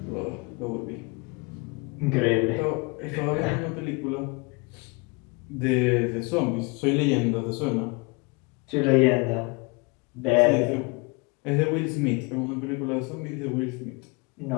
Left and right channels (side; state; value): right; quieter; 29.2 dB